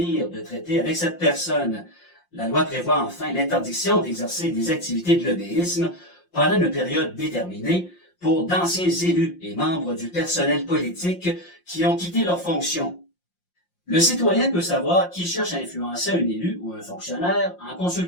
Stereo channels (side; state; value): right; late; 5.7 ms